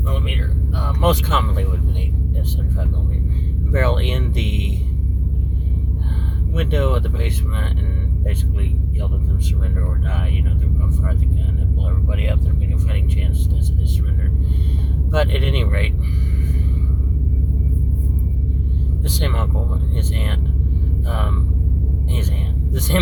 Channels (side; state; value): both; identical; correlation 1.00